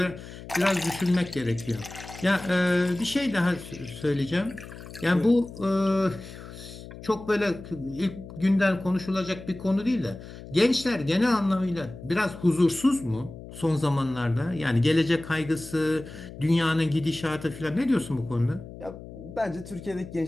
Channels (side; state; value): left; noise; hum, 14 dB below the sound